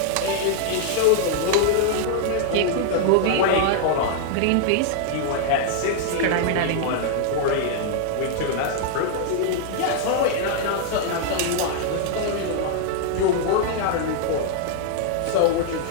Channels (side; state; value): both; different; correlation -0.01